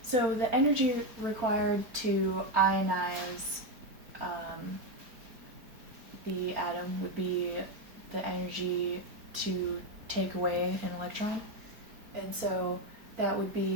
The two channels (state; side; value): late; left; 4.5 ms